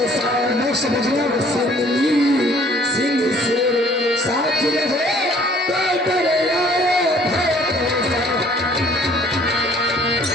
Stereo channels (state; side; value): normal; both; correlation 0.58